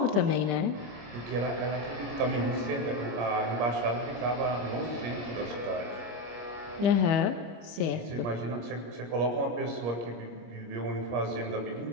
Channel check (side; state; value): left; late; 25 ms